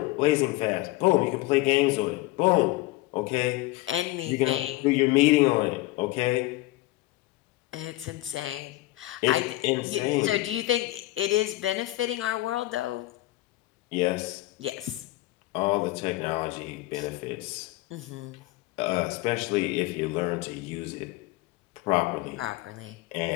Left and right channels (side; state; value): right; quieter; 18.6 dB